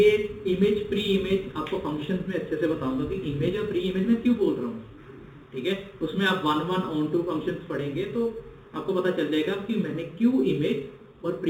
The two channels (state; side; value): identical; both; correlation 1.00